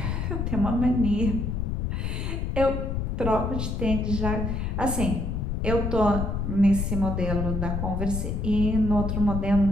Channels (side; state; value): left; noise; rumble, 1 dB below the sound